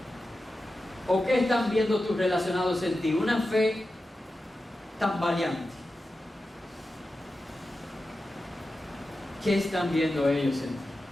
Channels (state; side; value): normal; both; correlation 0.92